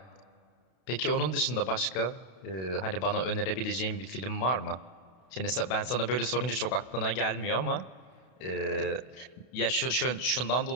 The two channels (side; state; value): right; late; 32 ms